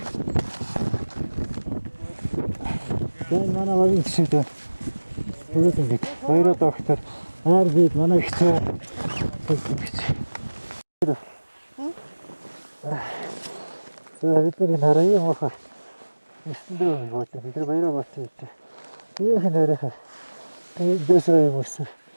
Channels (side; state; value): both; inverted; correlation -1.00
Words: Дан манай вагийн шийдэ. Бүгд ингэ. Баяраа доктор. Аар бид манай ихтэй. Бид нар хараа юм аа. Эсэндээ юу гэдэг. Бид баяраа бацсан гэж. Ийм хэнээрээ. Дэсрэ юм уу?